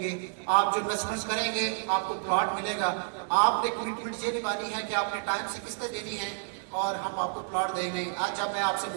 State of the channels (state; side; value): silent; left; digital silence